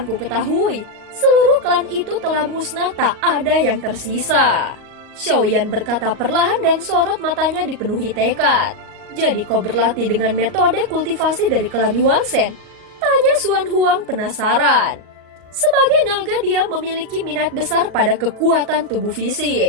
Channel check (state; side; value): late; left; 38 ms